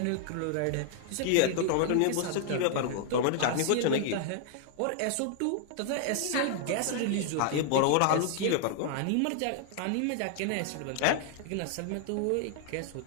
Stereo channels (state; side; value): different; both; correlation 0.00